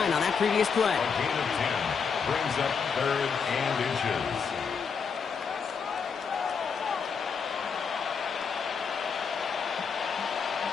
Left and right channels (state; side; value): quieter; right; 6.0 dB